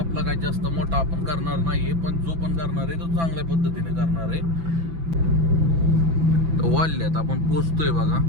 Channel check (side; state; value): left; late; 6.0 ms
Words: काही जास्त मोठा आपण करणार नाहीये, पण जो पण करणार आहे तो चांगल्या पद्धतीने करणार आहे. वाढल्यात आपण पोचतोय बघा,